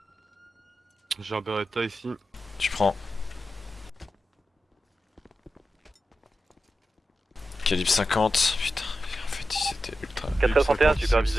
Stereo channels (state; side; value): normal; both; correlation 0.91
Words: J'ai un Beretta ici. Tu prends. Calibre 50, putain, en fait c'était ultra... 461,